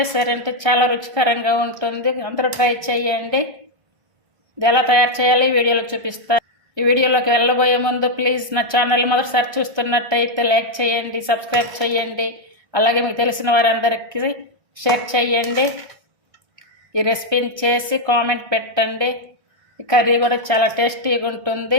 చాలా రుచికరంగా ఉంటుంది. అందరూ ట్రై చేయండి. ఇది ఎలా తయారు చేయాలి వీడియోలో చూపిస్తాను. ఈ వీడియోలోకి వెళ్ళబోయే ముందు ప్లీజ్ నా ఛానల్ మొదటిసారి చూస్తున్నట్టయితే లైక్ చేయండి, సబ్స్క్రైబ్ చేయండి, అలాగే మీకు తెలిసిన వారందరికీ షేర్ చేయండి. ఈ రెసిపీని చేసి కామెంట్ పెట్టండి. ఈ కర్రీ కూడా చాలా టేస్టీగా ఉంటుంది.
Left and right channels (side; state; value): left; late; 1.3 ms